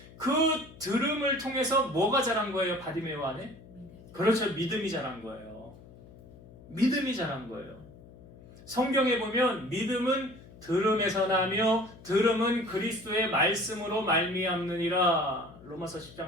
그 들음을 통해서 뭐가 자란 거예요? 바디메오 안에? 그렇죠. 믿음이 자란 거예요. 믿음이 자란 거예요. 성경에 보면 믿음은 들음에서 나며 들음은 그리스도의 말씀으로 말미암느니라. 로마서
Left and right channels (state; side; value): noise; left; hum, 20 dB below the sound